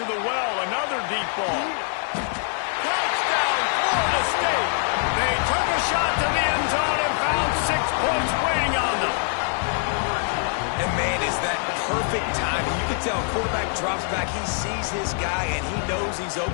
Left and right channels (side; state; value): right; silent; 63 dB below the other